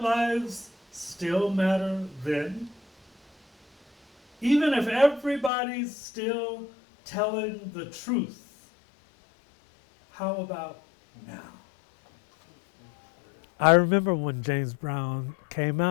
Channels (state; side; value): drops out; right; at 5.5 s